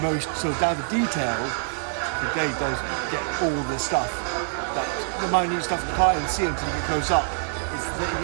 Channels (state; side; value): silent; left; 61 dB below the other